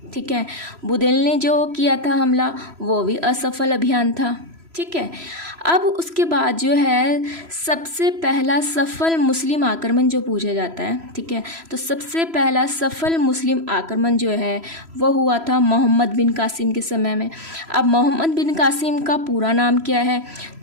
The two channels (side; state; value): left; late; 3.0 ms